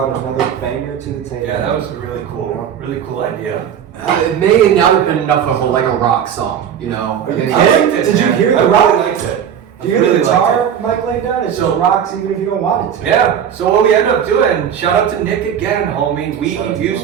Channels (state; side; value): quieter; left; 8.7 dB